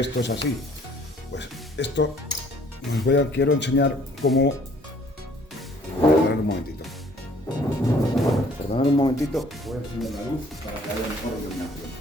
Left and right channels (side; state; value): both; normal; correlation 0.58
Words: es así? Pues esto quiero enseñar cómo... Perdonad un momentito. Perdonad un momentito, voy a encender la luz para que haya mejor iluminación.